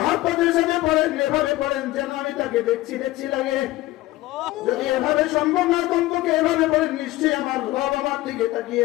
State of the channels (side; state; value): right; quieter; 17.6 dB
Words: সাথে পড়েন এভাবে পড়েন যেন আমি তাকে দেখছি দেখছি লাগে যদি এভাবে সম্ভব না কমপক্ষে এভাবে পড়েন নিশ্চয়ই আমার রব আমার দিকে তাকিয়ে